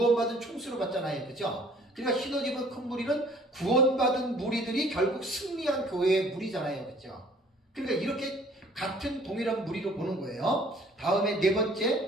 총수로 봤잖아요. 그죠? 그러니까 흰옷 입은 큰 무리는 구원받은 무리들이 결국 승리한 교회의 무리잖아요. 그죠? 그러니까 이렇게 같은 동일한 무리로 보는 거예요. 다음에 네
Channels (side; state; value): both; normal; correlation 0.55